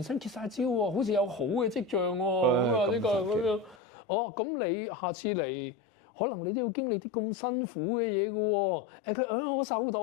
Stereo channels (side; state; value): right; drops out; at 3.8 s